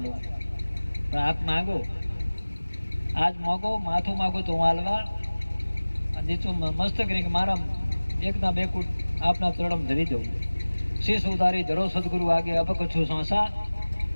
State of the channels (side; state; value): both; inverted; correlation -1.00